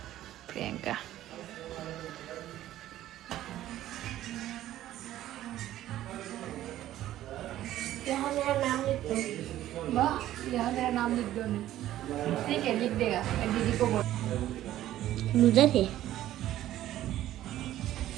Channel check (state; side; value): quieter; left; 13.5 dB